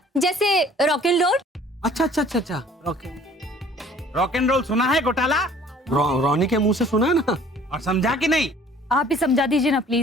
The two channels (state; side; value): normal; both; correlation 0.53